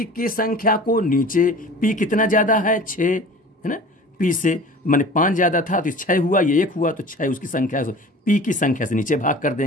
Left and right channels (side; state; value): both; normal; correlation 0.42